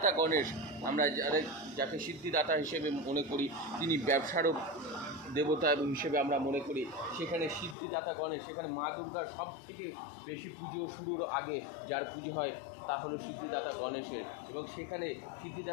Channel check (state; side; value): drops out; right; at 7.8 s